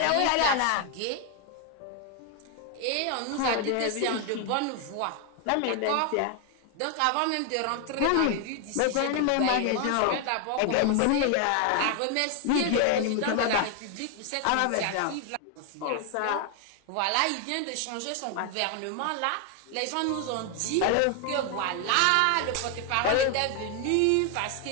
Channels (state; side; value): different; both; correlation 0.01